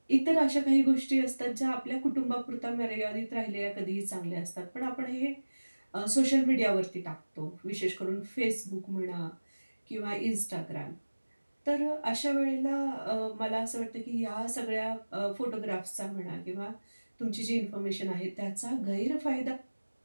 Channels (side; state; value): both; inverted; correlation -1.00